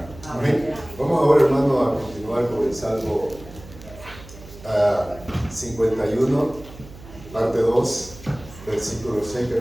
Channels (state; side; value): noise; right; hum, 17 dB below the sound